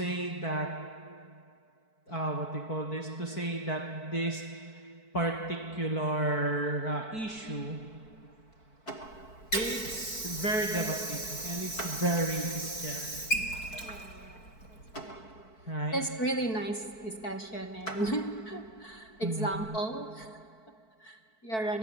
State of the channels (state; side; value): late; right; 4.6 ms